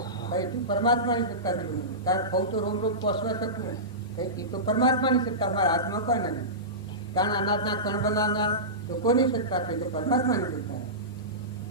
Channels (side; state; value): both; normal; correlation -0.20